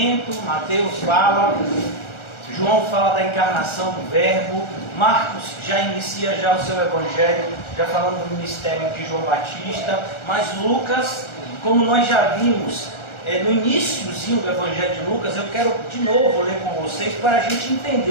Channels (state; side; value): late; right; 1.4 ms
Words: Mateus fala, João fala da encarnação do Verbo, Marcos já inicia o seu evangelho, já falando do ministério de João Batista, mas Lucas, como nós já vimos no iníciozinho do Evangelho de Lucas, eu quero de novo ler com vocês para a gente